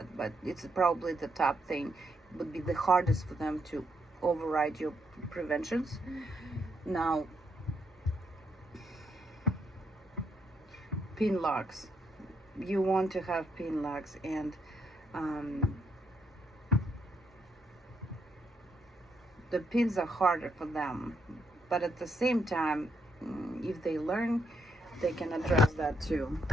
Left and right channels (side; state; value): both; normal; correlation 0.77